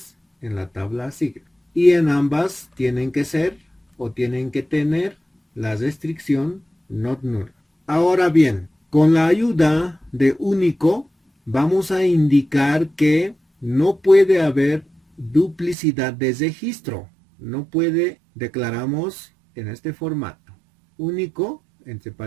en la tabla asigna. Y en ambas tienen que ser o tienen que tener la restricción not null. Ahora bien, con la ayuda de único vamos a indicar que no puede haber duplicidad de registro. No puede, declaramos en este formato. Único, entre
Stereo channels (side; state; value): left; drops out; at 15.8 s